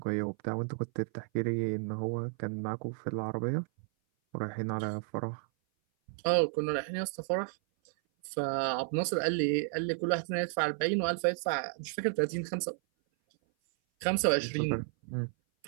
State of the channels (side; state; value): left; silent; 56 dB below the other